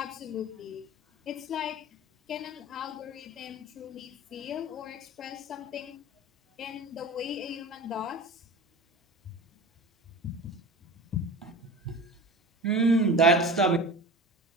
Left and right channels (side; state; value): both; normal; correlation 0.35